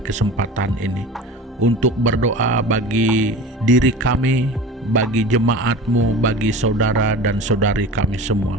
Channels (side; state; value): both; normal; correlation 0.35